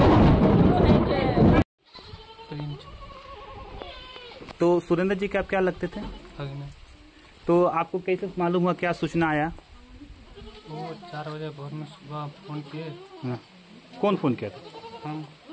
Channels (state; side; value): identical; both; correlation 1.00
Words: तो सुरेंद्र जी के आप क्या लगते थे? तो आपको कैसे मालूम हुआ, क्या सूचना आया? वो 4 बजे भोर में सुबह फोन किए। हाँ। कौन फोन किया था? हम।